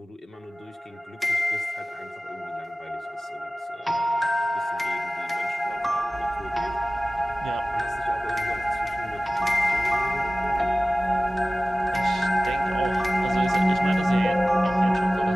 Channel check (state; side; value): normal; both; correlation 0.97